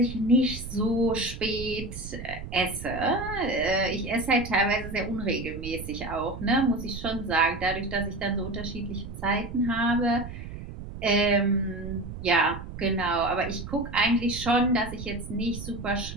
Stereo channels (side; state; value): right; noise; rumble, 10 dB below the sound